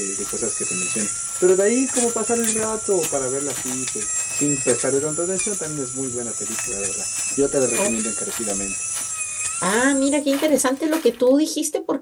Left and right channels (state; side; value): identical; both; correlation 1.00